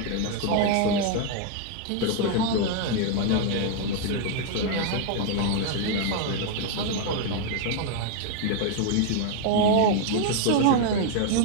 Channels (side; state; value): both; different; correlation 0.00